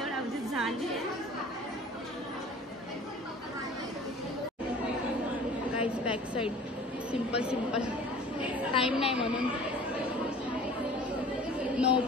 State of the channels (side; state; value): both; normal; correlation 0.45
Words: आमची झाली आहे. Guys back side simple time नाही म्हणून नो